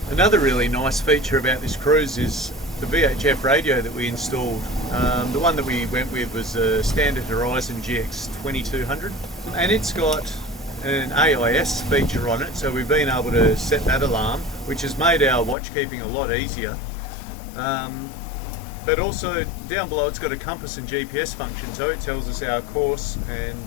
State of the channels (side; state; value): right; drops out; at 15.6 s